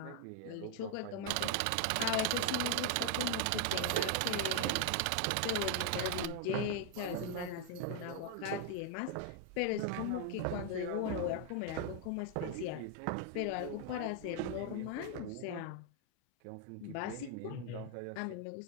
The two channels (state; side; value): different; both; correlation 0.00